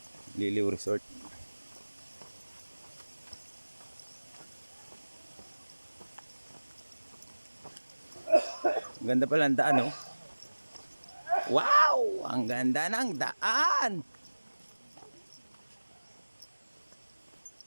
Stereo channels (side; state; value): both; inverted; correlation -1.00